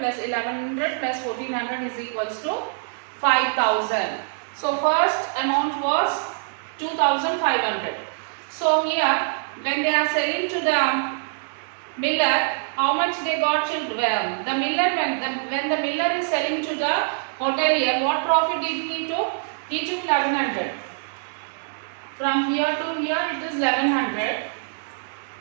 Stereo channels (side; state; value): left; silent; digital silence